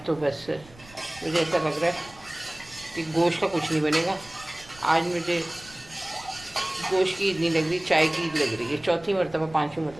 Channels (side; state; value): right; noise; rumble, 22 dB below the sound